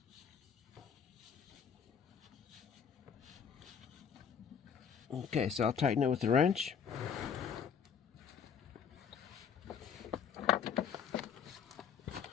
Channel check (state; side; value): quieter; right; 7.2 dB